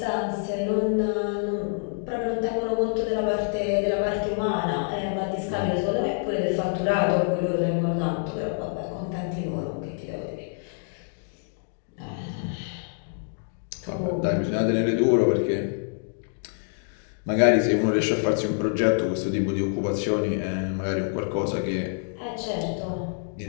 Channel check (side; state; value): right; silent; digital silence